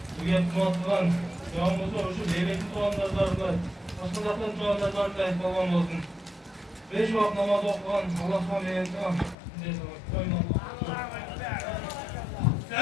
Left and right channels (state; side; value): drops out; right; at 9.3 s